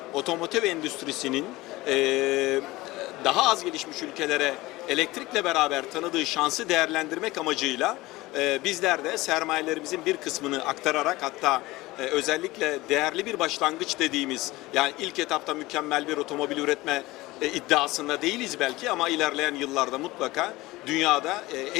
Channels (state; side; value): quieter; right; 19.6 dB